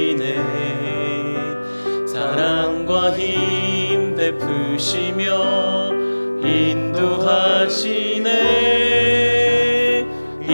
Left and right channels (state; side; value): inverted; both; correlation -1.00